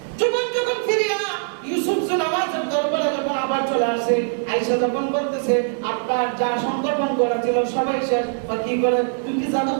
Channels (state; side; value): silent; left; digital silence